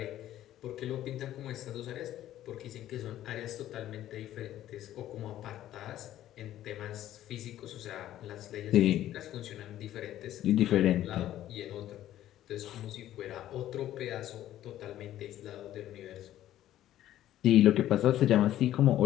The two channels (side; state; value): right; quieter; 13.0 dB